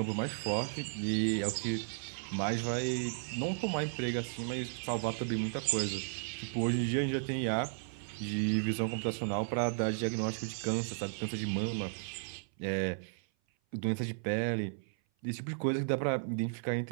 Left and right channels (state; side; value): silent; left; 55 dB below the other